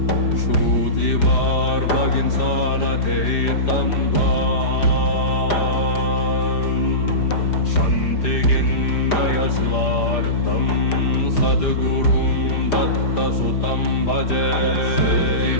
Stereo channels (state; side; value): late; right; 5.0 ms